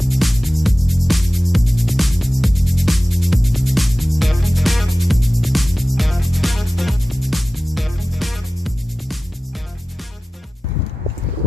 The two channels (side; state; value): both; normal; correlation 0.96